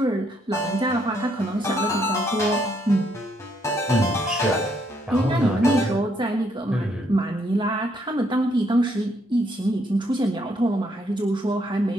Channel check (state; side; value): normal; both; correlation 0.72